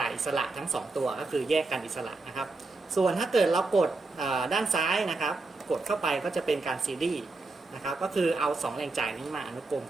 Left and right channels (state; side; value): quieter; left; 3.5 dB